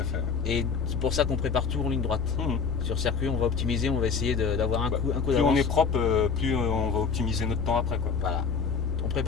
fait. Et c'est pour ça qu'on prépare tout en ligne droite. Sur circuit, on va optimiser, on va essayer d'avoir un coup Plus d'avance. on est propre, plus on va optimiser notre temps après, quoi. Voilà. On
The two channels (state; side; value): quieter; right; 5.6 dB